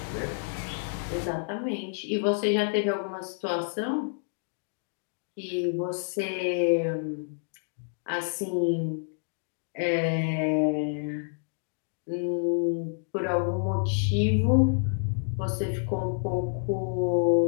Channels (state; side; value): silent; right; digital silence